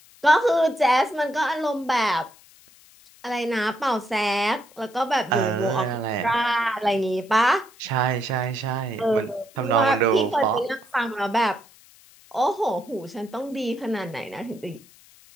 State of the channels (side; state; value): left; noise; hiss, 26 dB below the sound